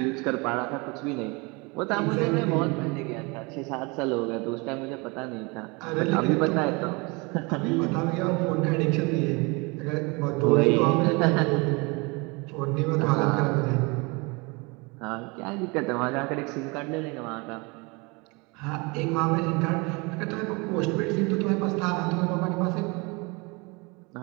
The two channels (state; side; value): quieter; left; 27.8 dB